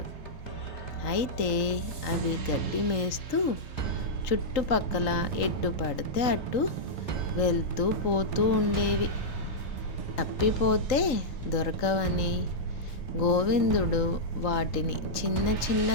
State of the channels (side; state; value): right; late; 3.8 ms